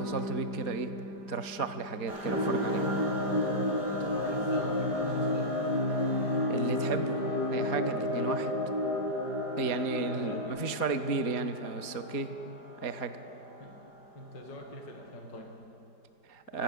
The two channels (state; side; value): late; right; 5.0 ms